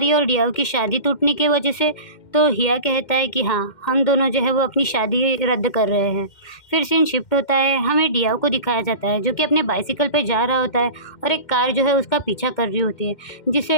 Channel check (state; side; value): late; right; 2.1 ms